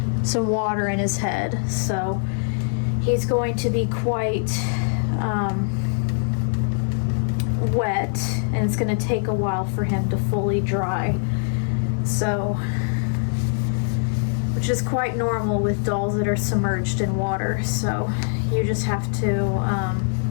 some water in his head, so he's going to be quite wet, and it's going to take a while for him to fully dry. So, which is quite normal with dolls that are submerged in water. So you just have to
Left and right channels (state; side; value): silent; right; digital silence